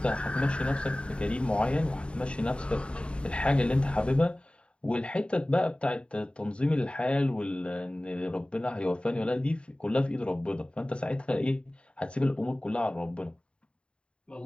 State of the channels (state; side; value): late; right; 0.056 ms